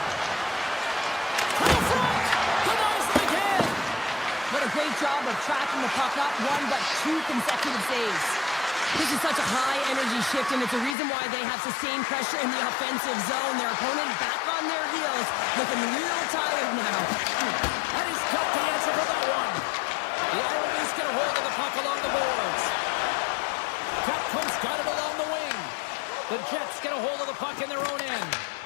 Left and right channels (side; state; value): right; drops out; at 11.0 s